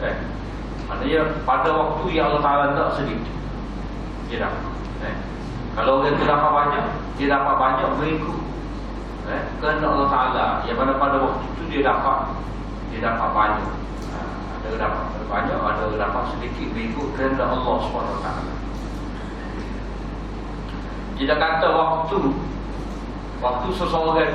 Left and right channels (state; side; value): identical; both; correlation 1.00